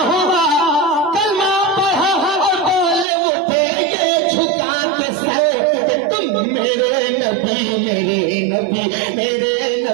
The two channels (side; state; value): left; drops out; at 3.1 s